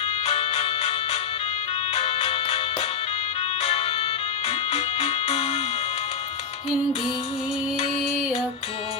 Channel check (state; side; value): quieter; right; 6.2 dB